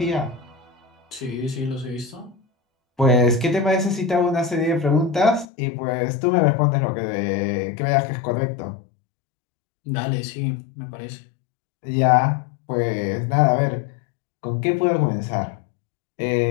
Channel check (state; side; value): drops out; right; at 5.5 s